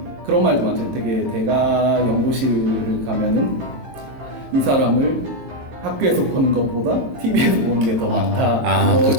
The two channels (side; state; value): left; late; 14 ms